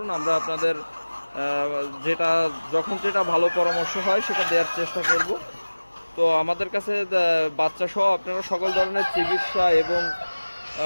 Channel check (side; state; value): both; inverted; correlation -1.00